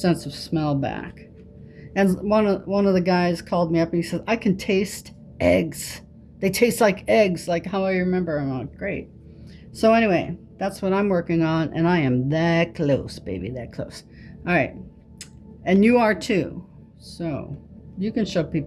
of smell back. And one of the guys called me up and he said, I can taste eggs. They taste like eggs, like how I remember. I'm like, great. So anyway, that's what I'm working on, and I am that close, baby, that close. All right. And you are too. So you can show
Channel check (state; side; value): identical; both; correlation 1.00